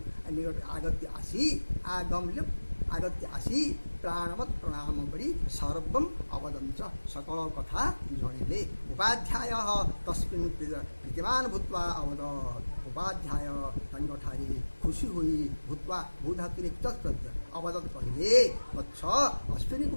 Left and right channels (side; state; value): both; inverted; correlation -1.00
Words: आगत्य आसी आगत्य आसी प्राणवत् प्रणाम करी सर्वम अवदं च सकल कथा जणिले उपाध्याय तस्मिन् प्रीतिमान भूत्वा अवदत् उपाध्याय तंगठारी खुशी हुई भूत्वा भूधातुरिक्त अवदत् कहिले वत्स अश्विनी